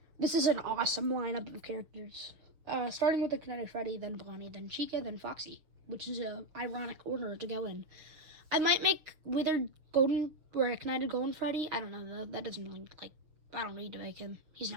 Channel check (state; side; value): late; left; 6.7 ms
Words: This is an awesome lineup of characters. Starting with Ignited Freddy, then Bonnie, then Chica, then Foxy, which is a ironic order to go in. I might make Withered Golden or Ignited Golden Freddy. I don't know though. That doesn't really, I don't need to make him. He's